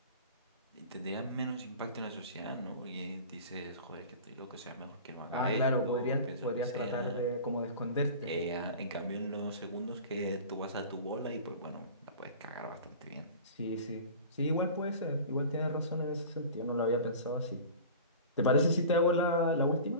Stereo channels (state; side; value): inverted; both; correlation -0.38